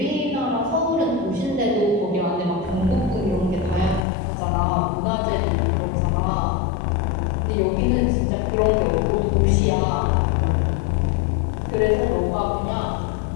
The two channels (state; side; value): drops out; right; at 4.0 s